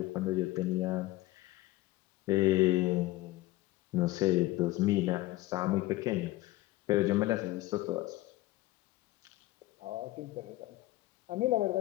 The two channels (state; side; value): quieter; right; 18.0 dB